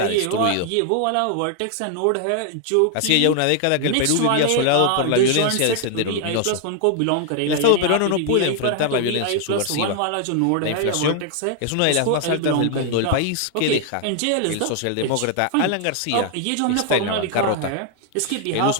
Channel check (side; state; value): both; different; correlation 0.00